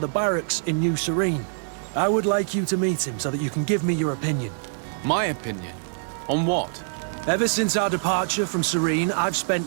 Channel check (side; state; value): left; silent; digital silence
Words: barracks in New Serene. I would like you to meet him so that you can give me your opinion. My opinion? On what? Ever since our departure from Serene, I've spent